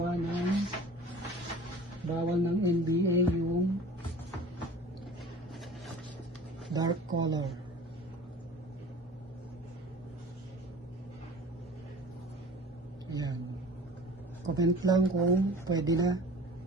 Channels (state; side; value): normal; both; correlation 0.43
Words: ng bawal ng NBA yung dark color. Ayan. Comment lang kung pwede na.